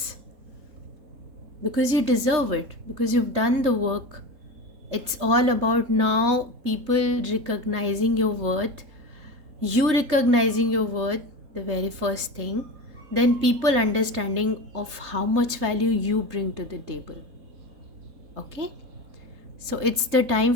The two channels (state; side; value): late; left; 3.8 ms